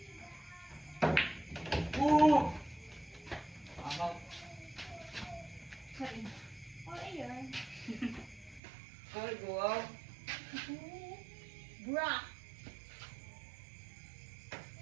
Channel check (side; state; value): left; drops out; at 8.6 s